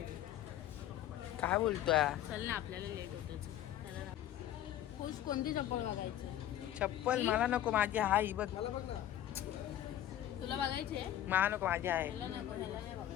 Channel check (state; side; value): quieter; right; 12.1 dB